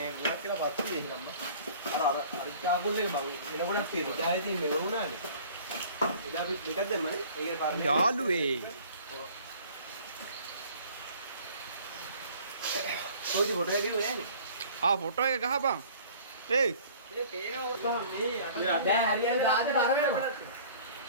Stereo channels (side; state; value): both; inverted; correlation -0.49